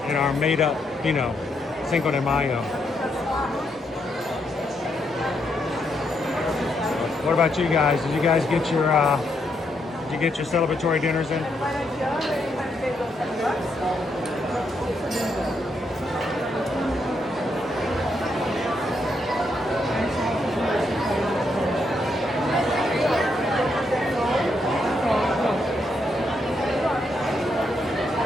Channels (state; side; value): normal; both; correlation 0.78